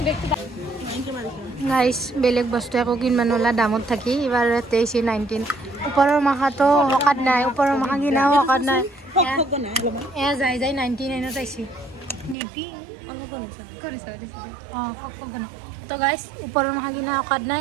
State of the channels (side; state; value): left; drops out; at 12.4 s